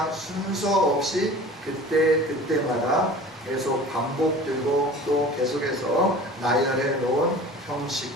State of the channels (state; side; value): normal; both; correlation 0.41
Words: 순서 없이 그때마다 계속 반복되고 또 계속해서 나열해 놓은